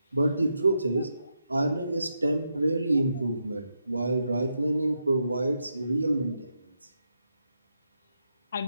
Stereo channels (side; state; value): both; inverted; correlation -0.84